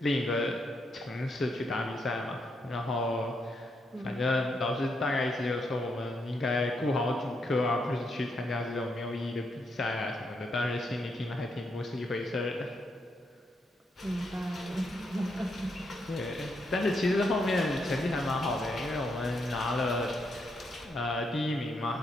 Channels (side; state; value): both; normal; correlation 0.79